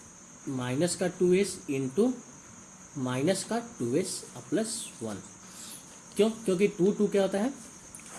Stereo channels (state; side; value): identical; both; correlation 1.00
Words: का 2s इंटू माइनस का 2s + 1। क्यों, क्योंकि 2 क्या होता है,